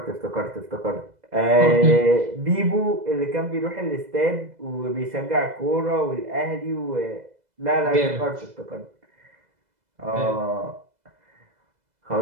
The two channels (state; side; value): late; left; 2.0 ms